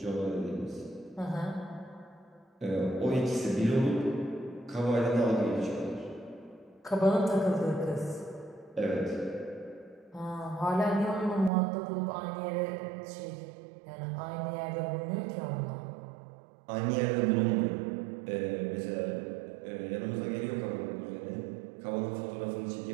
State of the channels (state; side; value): drops out; left; at 11.5 s